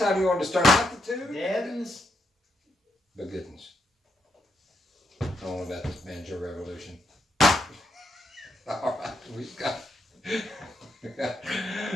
you wanted to start out the two? Deadens. But goodness. I don't know about this banjo revolution. All right, we've got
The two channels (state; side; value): normal; both; correlation 0.80